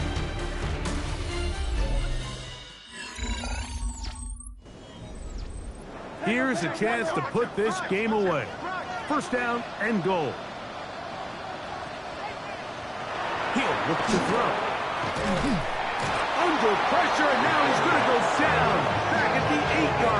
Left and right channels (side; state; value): both; identical; correlation 1.00